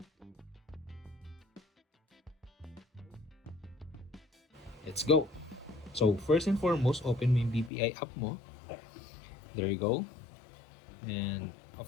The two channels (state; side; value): drops out; right; at 7.7 s